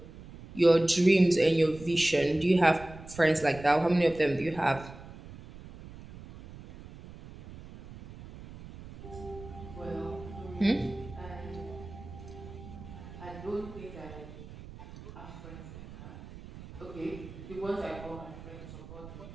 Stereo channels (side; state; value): right; noise; rumble, 15 dB below the sound